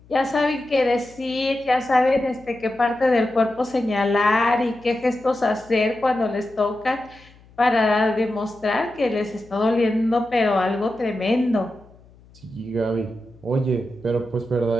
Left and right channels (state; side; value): noise; left; hum, 26 dB below the sound